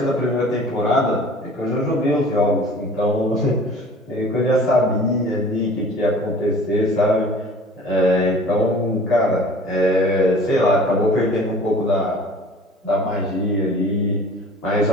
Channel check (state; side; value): normal; both; correlation 0.46